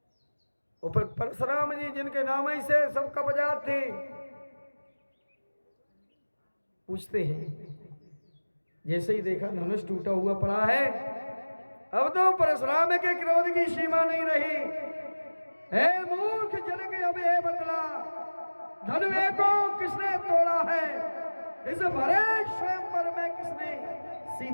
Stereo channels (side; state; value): both; inverted; correlation -1.00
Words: ऊपर परशुराम जी जिनके नाम ही से सब कब्जात थे। पूछते हैं, जैसे ही देखा धनुष टूटा हुआ पड़ा है, अब तो परशुराम के क्रोध की सीमा नहीं रही। हे मूर्ख जनक, अब ये बतला धनुष को किसने तोड़ा है? इस भरे स्वयंवर में किसने